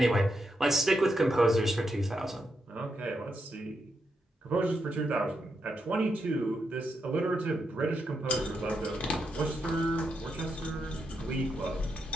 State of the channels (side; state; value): both; normal; correlation 0.83